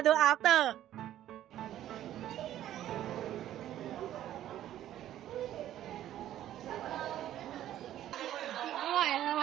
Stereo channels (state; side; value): quieter; left; 12.3 dB